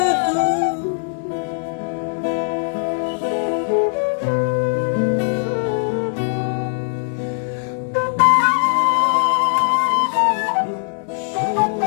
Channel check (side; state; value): right; silent; 63 dB below the other